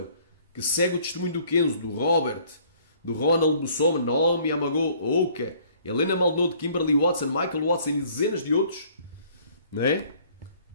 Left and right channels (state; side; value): inverted; both; correlation -0.58